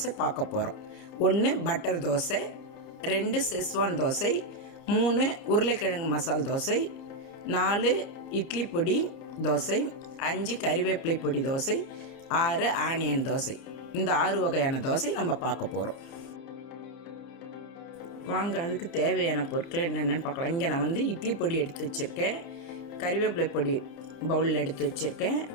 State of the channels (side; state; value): right; late; 30 ms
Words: பார்க்க போகிறோம். 1 பட்டர் தோசை, 2 செஸ்வான் தோசை, 3 உருளைக்கிழங்கு மசால் தோசை, 4 இட்லி பொடி தோசை, 5 கருவேப்பிலை பொடி தோசை, 6 ஆனியன் தோசை. இந்த 6 வகையான தோசை நம்ம பார்க்க போகிறோம். வாங்க அதுக்கு தேவையான பொருட்கள் என்னென்னு பார்க்கலாம். இங்கே நான் இட்லி பொடி எடுத்து வச்சுருக்கேன், கருவேப்பிலை பொடி பவுலில் எடுத்து வச்சுருக்கேன்,